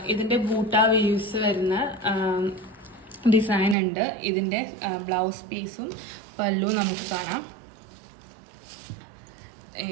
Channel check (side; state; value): left; drops out; at 3.8 s